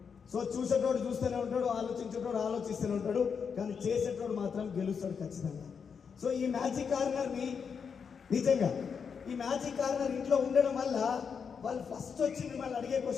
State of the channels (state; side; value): quieter; right; 6.3 dB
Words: సో చూసేటోడు చూస్తూనే ఉంటాడు, ఆలోచించేటోడు ఆలోచిస్తూనే ఉంటాడు, కానీ చేసేటోడు మాత్రం గెలుస్తాడు ఖచ్చితంగా. సో ఈ మ్యాజిక్ కార్నర్ని నిజంగా ఈ మ్యాజిక్ కార్నర్ ఇంట్లో ఉండడం వల్ల వాళ్ళు ఫస్ట్ వచ్చి మిమ్మల్ని అడిగే